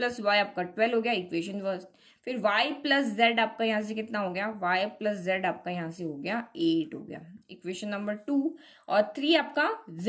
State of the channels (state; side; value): identical; both; correlation 1.00